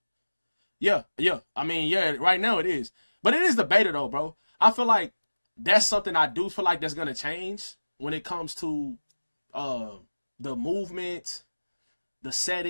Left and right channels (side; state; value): both; inverted; correlation -1.00